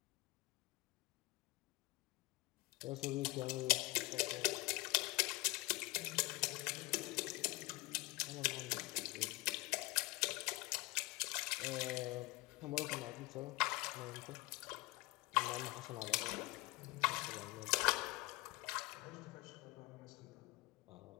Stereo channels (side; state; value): right; quieter; 23.1 dB